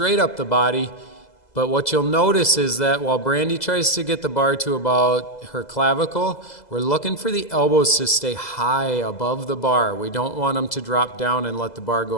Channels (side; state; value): right; late; 2.0 ms